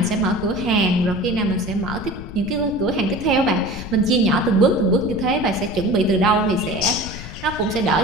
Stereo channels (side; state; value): left; noise; rumble, 12 dB below the sound